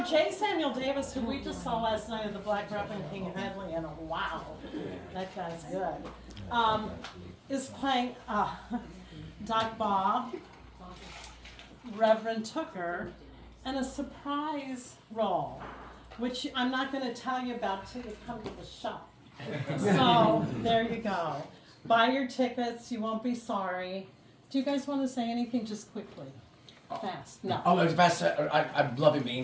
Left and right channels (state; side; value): identical; both; correlation 1.00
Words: J. Samuel Davis, who we just saw last night at the Black Rap in King Headley, and wow, that guy's good, is playing Doc Bob, Reverend Tooker, and a surprise role, which I'm not going to tell you about till you come to the show. So there you go. Buy your tickets. You won't be sorry. Do you guys want to say anything just quickly? Fast. No. Oh, it's best. I'm loving being